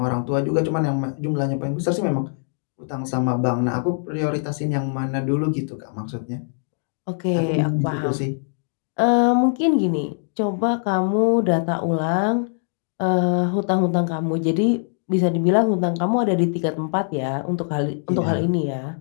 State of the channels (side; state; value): right; silent; digital silence